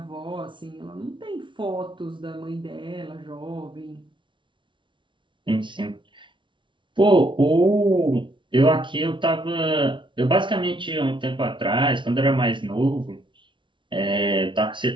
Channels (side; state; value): left; late; 0.24 ms